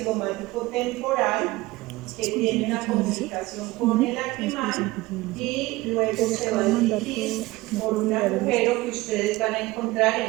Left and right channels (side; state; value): left; quieter; 19.9 dB